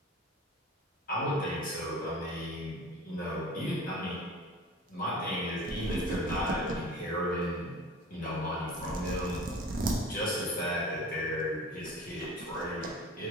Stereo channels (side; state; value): both; normal; correlation 0.40